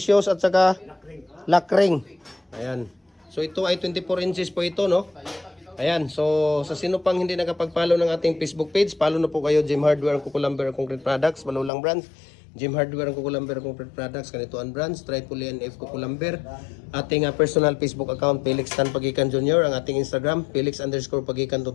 shoes, at saka lock ring. Ayan. So, ito ay 24 inches po ito, no? Ayan, so sa sino pang hindi nakapag-follow ng ating Facebook page, follow na po kayo, Jim Hardware, Kukulamber Concrete Products, Malulang Brands, Jim Hardware, Kukulamber Concrete Products, Kanituan Brands, Tripoli NF Kukulamber, ating personal Facebook account, Felix Tan Pagikan Jr., ang ating Instagram, Felix_Pagikan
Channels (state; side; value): drops out; right; at 11.7 s